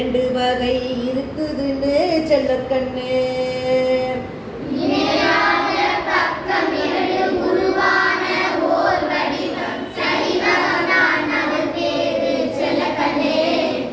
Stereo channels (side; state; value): both; identical; correlation 1.00